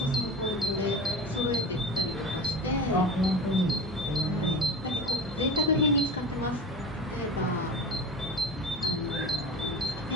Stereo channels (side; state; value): both; normal; correlation 0.31